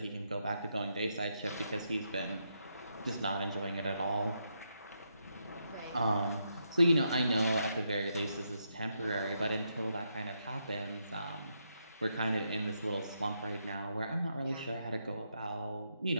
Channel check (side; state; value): both; inverted; correlation -0.80